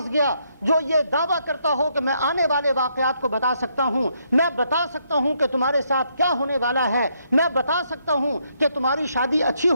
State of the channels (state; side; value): inverted; both; correlation -0.74